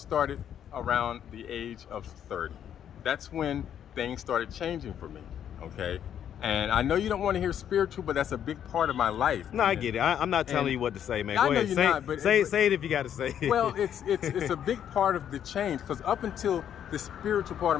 around the age of 30. That's when things started changing for me. Okay, and I know you don't want to hear spiritual, but that's a big part of my life. No, I man. get it. I'm not telling And you what to say, man. I Go know ahead. you're Say, not, but- say it if you got to say it. Well, it's a big part of the change, because up until the spiritual part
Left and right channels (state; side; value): quieter; right; 9.5 dB